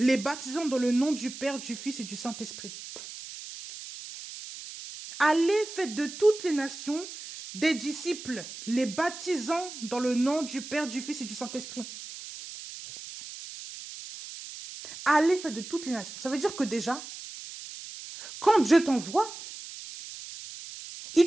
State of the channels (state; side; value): noise; right; hiss, 12 dB below the sound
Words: baptisant dans le nom du Père, du Fils et du Saint-Esprit. Allez, faites de toutes les nations des disciples, les baptisant dans le nom du Père, du Fils et du Saint-Esprit. Allez, faites de toutes les nations. Ça veut dire que déjà, quand Dieu t'envoie, il